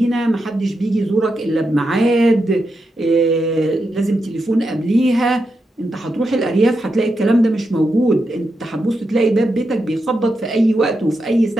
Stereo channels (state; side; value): normal; both; correlation 0.86